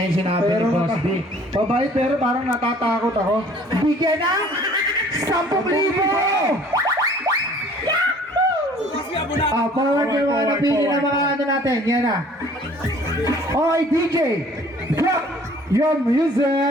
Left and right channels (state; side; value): normal; both; correlation 0.53